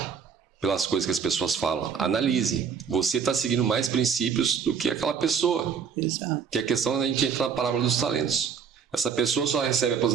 pelas coisas que as pessoas falam. Analise. Você está seguindo mais princípios do que aquela pessoa. Exato. Que é a questão da gente entra na parábola dos talentos. Essa pessoa só recebe a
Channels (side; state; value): left; quieter; 6.8 dB